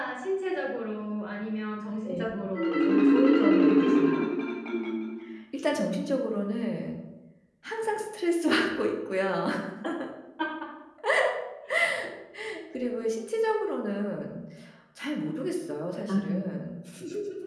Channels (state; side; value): identical; both; correlation 1.00